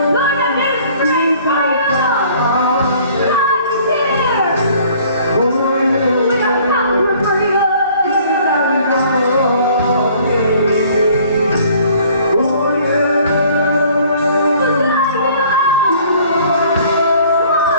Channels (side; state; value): both; inverted; correlation -0.56